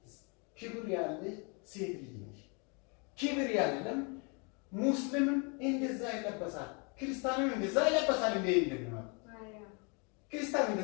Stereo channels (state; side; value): quieter; right; 34.1 dB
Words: ክብር ያለሽ ሴት ልጅ ነሽ ክብር ያለም ሙስሊምም እንደዛ ይለበሳል ክርስቲያንም እንደዛ ይለበሳል እንዴ እንደምን ክርስቲያን